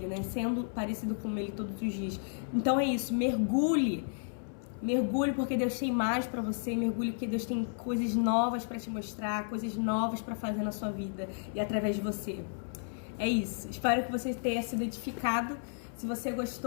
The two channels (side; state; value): right; silent; 56 dB below the other